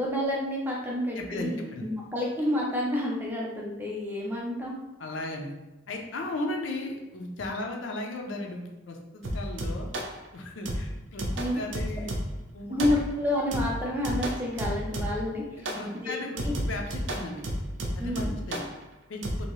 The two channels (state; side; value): normal; both; correlation 0.59